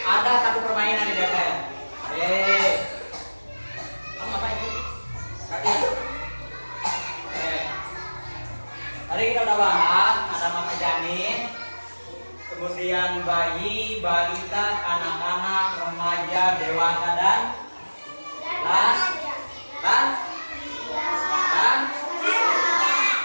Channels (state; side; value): inverted; both; correlation -1.00